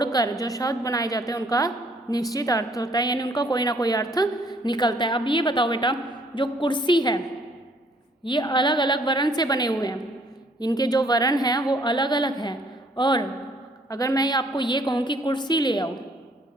जो शब्द बनाए जाते हैं उनका निश्चित अर्थ होता है, यानी उनका कोई ना कोई अर्थ निकलता है। अब ये बताओ बेटा, जो कुर्सी है ये अलग अलग वर्ण से बने हुए हैं, इनके जो वर्ण हैं वो अलग अलग हैं। और अगर मैं आपको ये कहूँ कि कुर्सी ले आओ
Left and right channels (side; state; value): both; normal; correlation 0.63